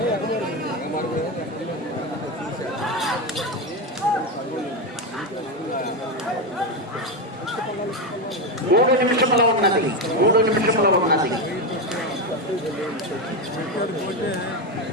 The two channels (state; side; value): normal; both; correlation 0.12